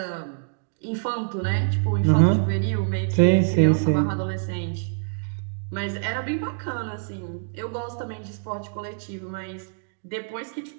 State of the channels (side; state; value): left; silent; digital silence